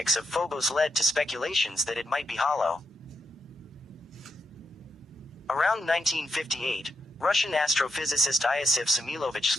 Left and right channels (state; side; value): normal; both; correlation 0.83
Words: of Phobos led to speculations that it might be hollow. Around 1958, Russian astrophysicist Iosif Samilovich